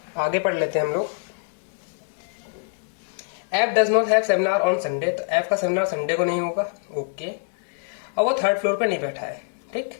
आगे पढ़ लेते हैं हम लोग। F does not have seminar on Sunday, तो एफ का सेमिनार संडे को नहीं होगा, ओके। और वो थर्ड फ्लोर पे नहीं बैठा है, ठीक,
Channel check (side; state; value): right; silent; 62 dB below the other